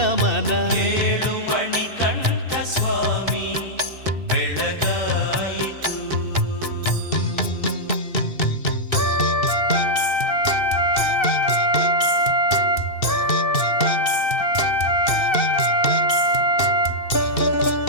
ಏಳು ಮಣಿಕಂಠ ಸ್ವಾಮಿ ಬೆಳಗಾಯಿತು.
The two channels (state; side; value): late; right; 2.6 ms